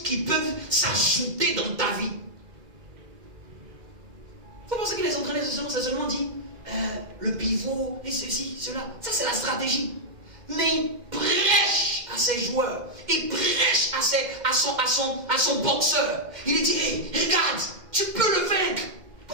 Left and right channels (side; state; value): left; late; 2.1 ms